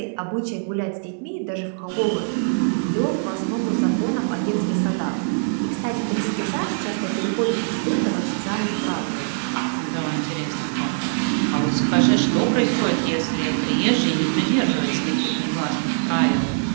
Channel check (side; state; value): left; silent; digital silence